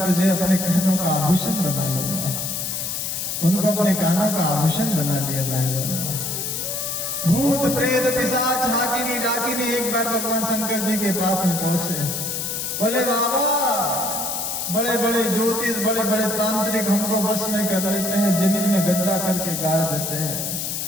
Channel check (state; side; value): noise; left; hiss, 3 dB below the sound